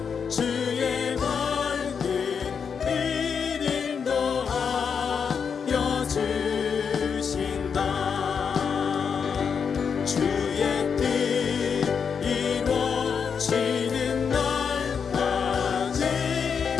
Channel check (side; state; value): right; quieter; 6.5 dB